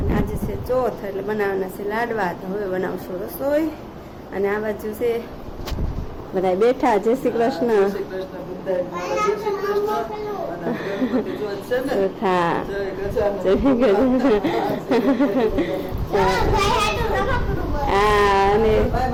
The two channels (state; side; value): identical; both; correlation 1.00